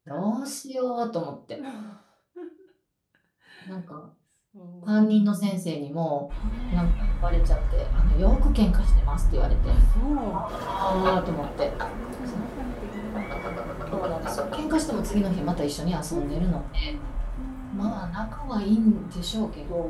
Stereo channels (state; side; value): identical; both; correlation 1.00